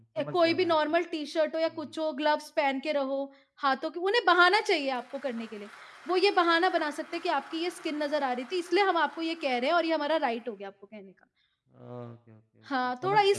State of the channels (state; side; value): identical; both; correlation 1.00